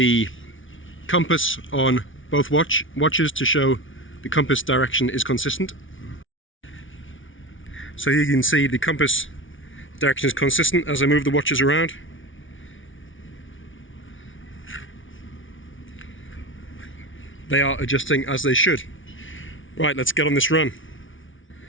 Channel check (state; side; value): late; right; 0.57 ms